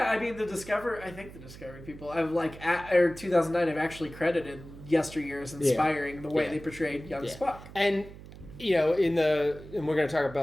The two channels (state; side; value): noise; right; hum, 16 dB below the sound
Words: I mean, the Discovery people, 2009 have actually credited Yesteryear as inspiring the way they portrayed young Spock. And, and we're going to talk